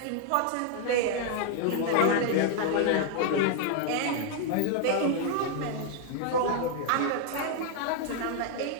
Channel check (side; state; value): both; different; correlation 0.00